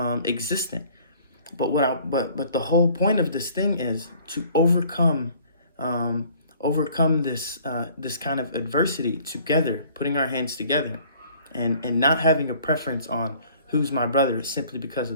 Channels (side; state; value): both; inverted; correlation -0.55